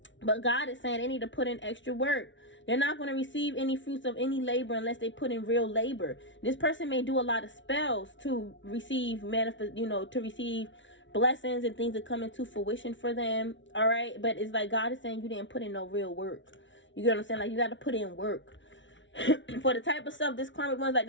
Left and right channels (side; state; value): right; late; 0.55 ms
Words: But God is saying they need to put in extra work. They're not going to receive any fruits of any labor unless they put in real labor. This person may do a lot of spells to receive to receive blessings and things that come into fruition for them. All right, but it's like God is saying you didn't put in no real work. You get what I'm saying? Like you got to put in work. For the type of stuff this karmic one's like,